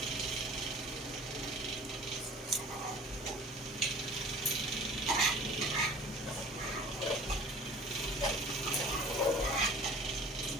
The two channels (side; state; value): both; normal; correlation 0.45